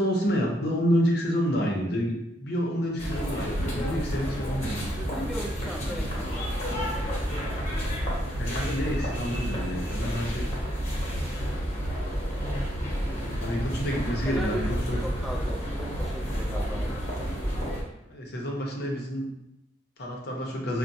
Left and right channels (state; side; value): normal; both; correlation 0.76